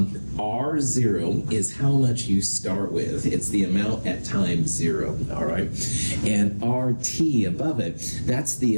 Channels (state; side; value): inverted; both; correlation -1.00